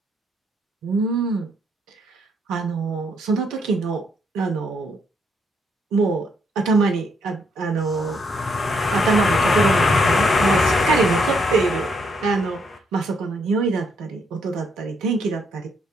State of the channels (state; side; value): normal; both; correlation 0.73